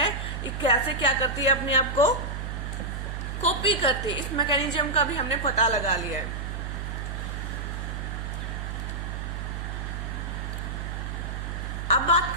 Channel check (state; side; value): noise; right; hum, 5 dB below the sound